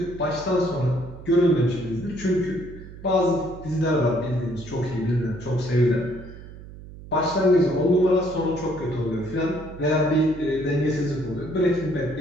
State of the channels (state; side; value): noise; right; hum, 15 dB below the sound